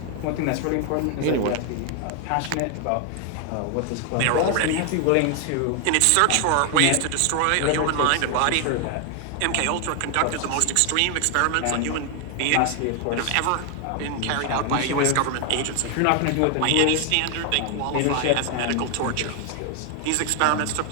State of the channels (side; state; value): both; different; correlation 0.00